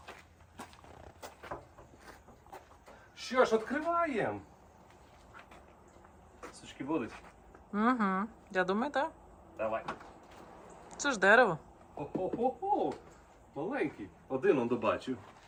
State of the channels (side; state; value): both; identical; correlation 1.00